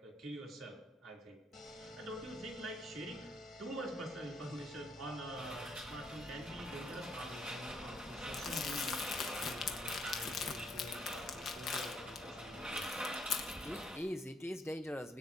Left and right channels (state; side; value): normal; both; correlation 0.71